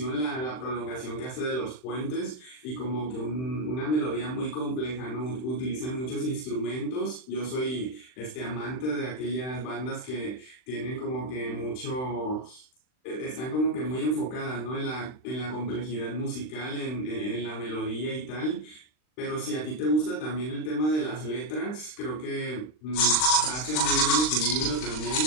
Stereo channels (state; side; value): late; right; 39 ms